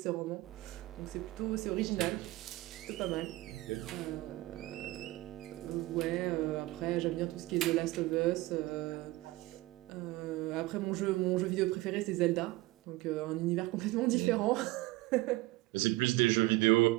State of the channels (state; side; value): quieter; left; 19.7 dB